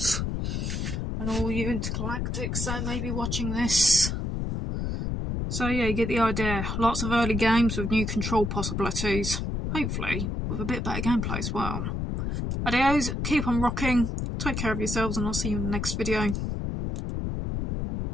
And all you intergalactics that may be watching this. So yeah, you get the idea. Lots of early games with new control possibilities. Hopefully, with a bit better gameplay as well. Adios, keep on rocking, take care of yourselves, and I'll see you in the next video.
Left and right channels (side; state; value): left; noise; rumble, 2 dB below the sound